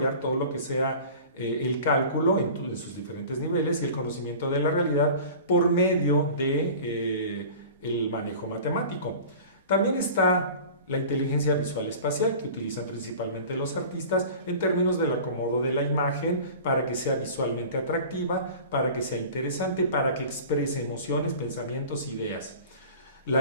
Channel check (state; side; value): inverted; both; correlation -0.40